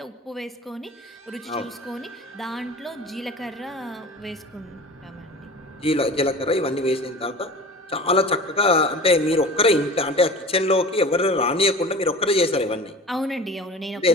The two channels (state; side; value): normal; both; correlation 0.38